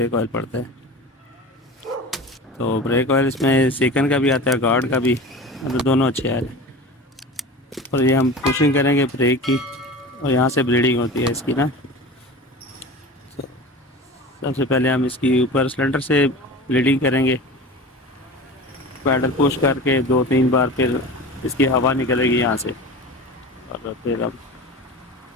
ऑयल पड़ता है। तो ब्रेक ऑयल इसमें सेकंड का भी आता है, गार्ड का भी, मतलब दोनों अच्छे आ रहे हैं। और ये हम पुशिंग करेंगे ब्रेक की, और यहाँ से ब्लीडिंग होती है इसकी ना। तो सबसे पहले हम इसकी ऊपर सिलेंडर से ब्लीडिंग करेंगे, पैडल पुश करके 2-3 बार, फिर इसकी हवा निकलेगी यहाँ से, और फिर अब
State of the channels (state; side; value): normal; both; correlation 0.34